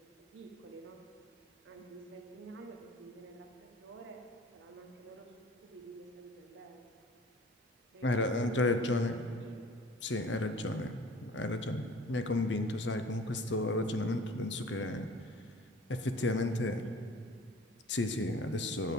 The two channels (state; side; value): normal; both; correlation 0.47